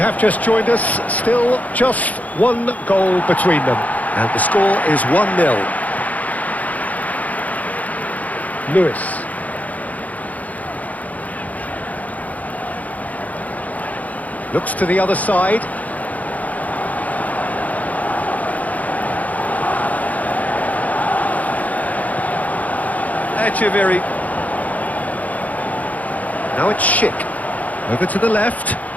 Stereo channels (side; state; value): right; late; 0.075 ms